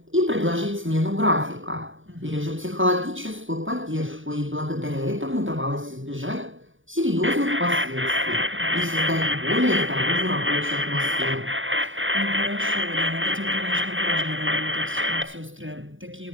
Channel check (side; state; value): left; late; 0.57 ms